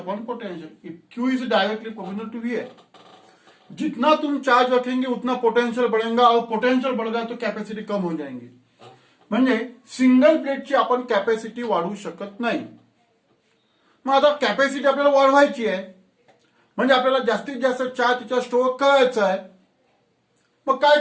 potential, Q is directly proportional to V है। जितना तुम चार्ज रखेंगे उतना पोटेंशियल बढ़ेगा, और पोटेंशियल बढ़ेगा तो कॅपॅसिटी कम हो जाएंगे। म्हणजे सिंगल प्लेटची आपण कॅपॅसिटी वाढवू शकत नाही। मग आता कॅपॅसिटी आपल्याला वाढवायची आहे, म्हणजे आपल्याला जास्तीत जास्त चार्ज तिच्या स्टोअर करायचा आहे। मग काय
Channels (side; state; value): both; identical; correlation 1.00